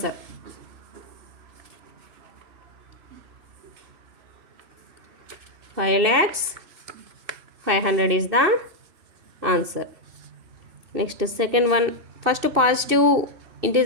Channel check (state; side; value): late; left; 2.6 ms